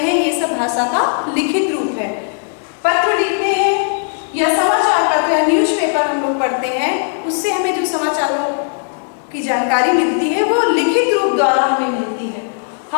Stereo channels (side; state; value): right; silent; 63 dB below the other